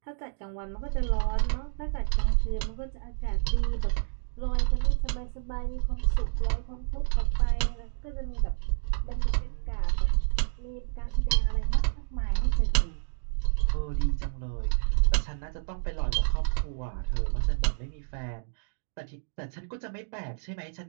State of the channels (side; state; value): left; silent; digital silence